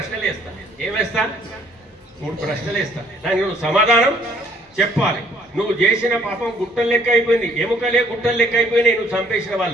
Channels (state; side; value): normal; both; correlation 0.62